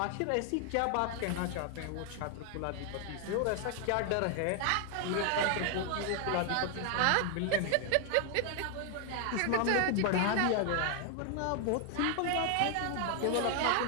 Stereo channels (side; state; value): both; different; correlation 0.00